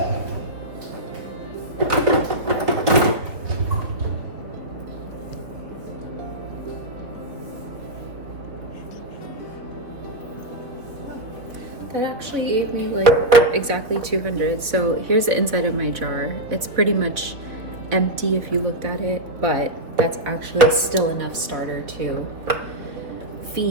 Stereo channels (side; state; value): left; late; 3.9 ms